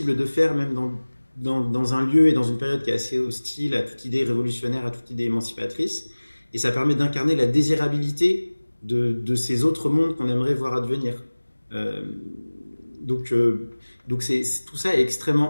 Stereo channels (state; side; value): inverted; both; correlation -1.00